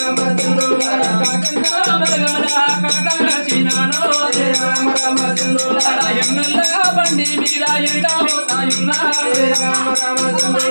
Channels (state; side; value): inverted; both; correlation -1.00